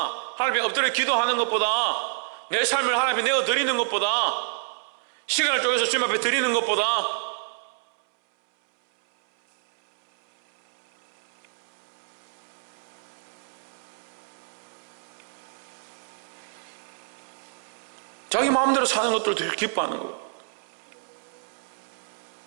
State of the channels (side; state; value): left; silent; 60 dB below the other